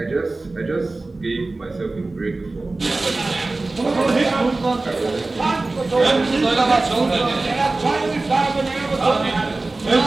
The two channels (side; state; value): left; quieter; 3.2 dB